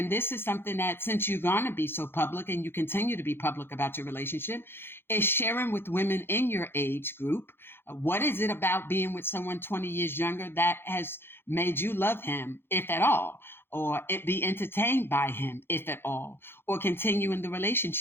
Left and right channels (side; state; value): right; late; 0.11 ms